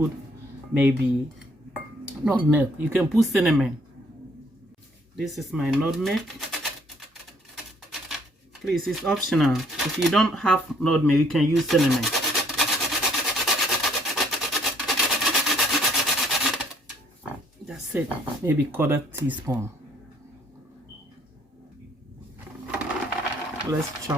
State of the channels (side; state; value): both; normal; correlation 0.63